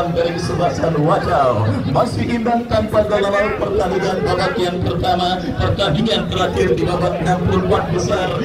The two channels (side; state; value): both; identical; correlation 1.00